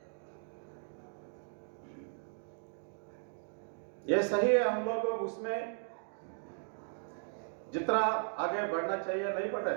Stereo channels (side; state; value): left; silent; digital silence